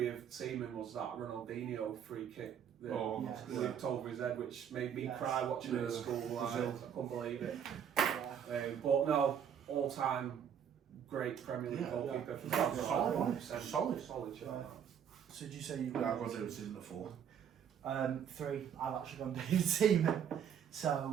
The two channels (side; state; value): left; quieter; 8.5 dB